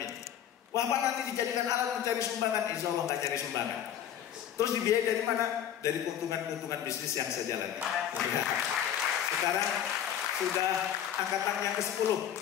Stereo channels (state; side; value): quieter; right; 10.0 dB